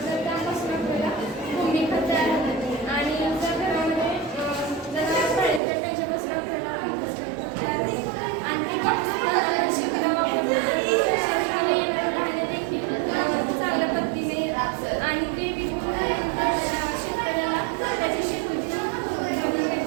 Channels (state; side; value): drops out; left; at 5.6 s